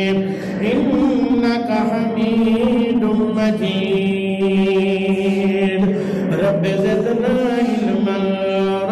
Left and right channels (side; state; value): both; identical; correlation 1.00